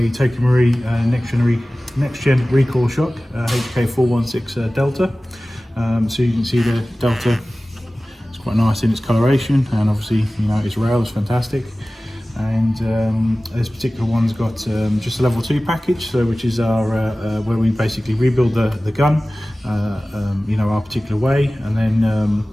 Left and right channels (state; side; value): normal; both; correlation 0.97